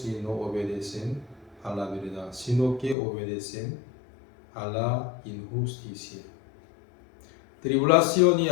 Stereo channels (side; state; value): right; drops out; at 3.0 s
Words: y no obedecen a la verdad, sino que obedecen a la injusticia. Tribulación y